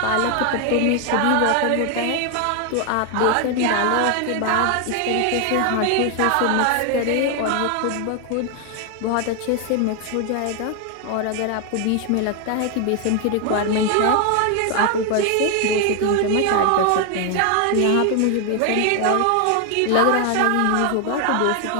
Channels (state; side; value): different; both; correlation 0.01